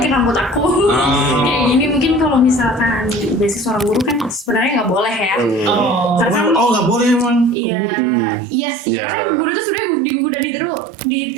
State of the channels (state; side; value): drops out; left; at 7.6 s